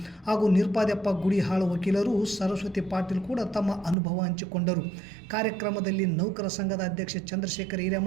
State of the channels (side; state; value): left; drops out; at 4.0 s